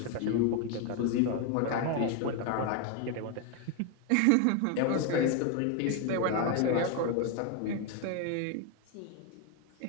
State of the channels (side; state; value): both; different; correlation 0.01